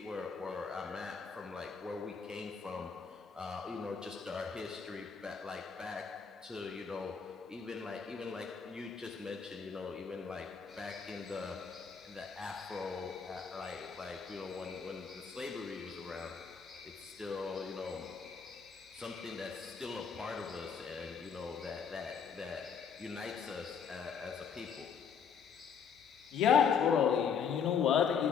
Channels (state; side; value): quieter; right; 6.5 dB